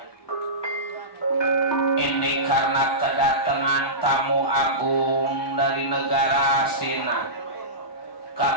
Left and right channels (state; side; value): late; right; 1.2 ms